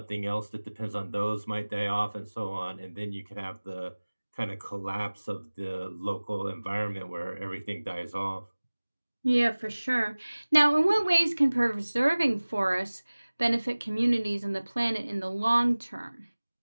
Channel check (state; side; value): inverted; both; correlation -1.00